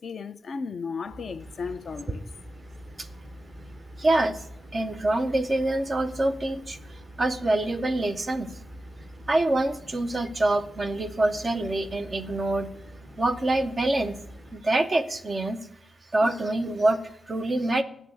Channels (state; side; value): normal; both; correlation 0.93